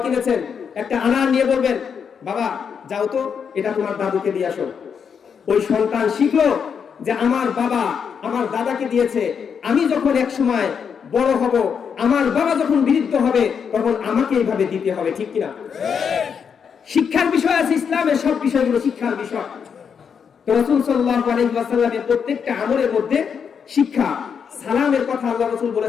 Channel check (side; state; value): right; quieter; 6.8 dB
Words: কিনেছেন, একটা আনার নিয়ে বলবেন, বাবা যাও তো এটা তোমার দাদুকে দিয়ে আসো। ওই সন্তান শিখলো যে আমার বাবা আমার দাদাকে দিয়েছে, আমি যখন এক সময় বড় হব, আমার বাবা যখন বৃদ্ধ হবে, তখন আমাকে এইভাবে দিতে হবে, ঠিক কিনা? শিক্ষার বিষয় আছে, ইসলামের সব বিষয়গুলো শিক্ষার বিষয়। তো রাসূল সাল্লাল্লাহু আলাইহি ওয়াসাল্লামের প্রত্যেকটা আমলের মধ্যে শিক্ষা। সালামের কথা আল্লাহ রাসূল